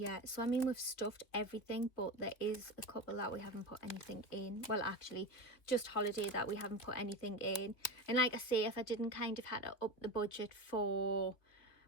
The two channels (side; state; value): right; late; 2.9 ms